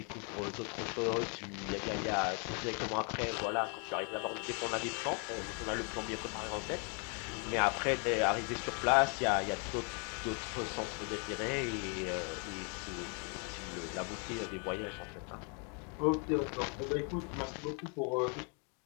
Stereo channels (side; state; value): right; quieter; 37.5 dB